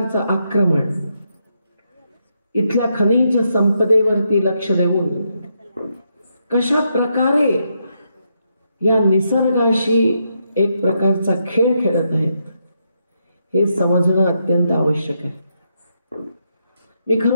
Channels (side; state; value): both; inverted; correlation -0.80